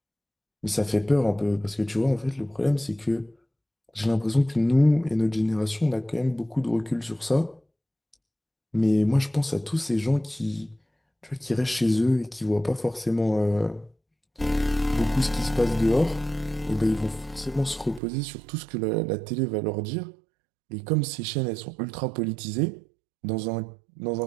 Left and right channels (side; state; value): left; drops out; at 18.0 s